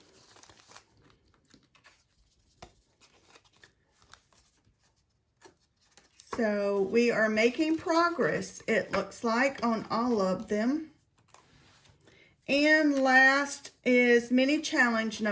So we are making progress, it looks like, on all of them. And last is mini challenge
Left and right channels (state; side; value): identical; both; correlation 1.00